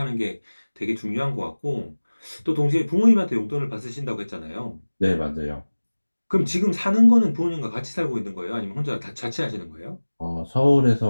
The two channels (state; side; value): inverted; both; correlation -1.00